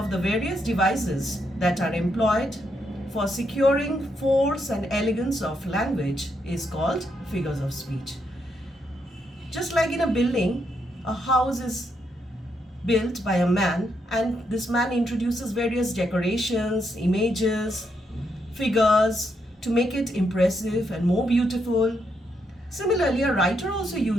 the various devices that are employed for securing force and elegance of language is called figures of speech. Just like in a building, a house is built by a man, and this man introduces various decorations, images, figures to make it impressive and more beautiful. Similarly, a writer also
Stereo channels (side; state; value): both; normal; correlation 0.79